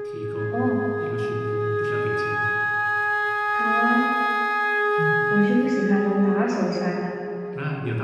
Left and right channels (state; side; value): identical; both; correlation 1.00